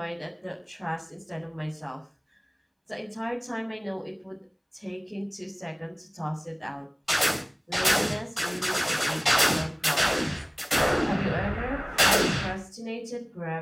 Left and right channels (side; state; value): both; identical; correlation 1.00